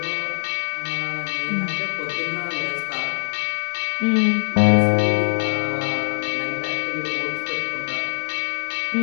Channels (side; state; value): right; silent; digital silence